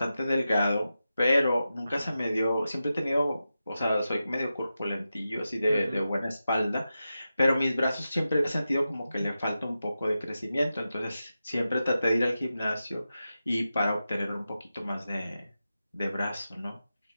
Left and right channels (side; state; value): both; inverted; correlation -0.91